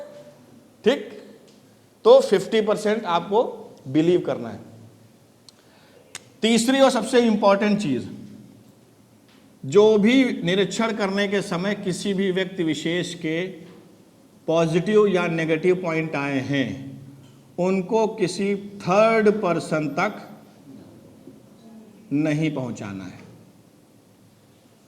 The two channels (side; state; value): both; identical; correlation 1.00